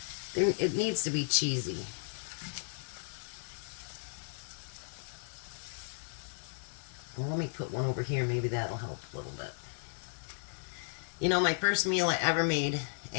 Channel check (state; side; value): silent; right; digital silence